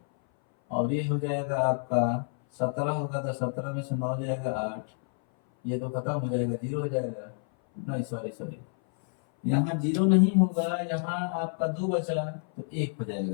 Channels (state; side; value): silent; right; 57 dB below the other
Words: और ये हो जाएगा आपका 17 होगा, तो 17 में से 9 जाएगा 8, ये तो खत्म हो जाएगा 0 हो जाएगा। नहीं सॉरी, यहाँ 0 नहीं होगा, यहाँ आपका 2 बचा तो 1 हो